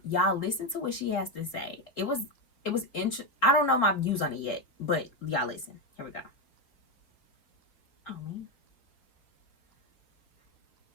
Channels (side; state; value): right; late; 3.7 ms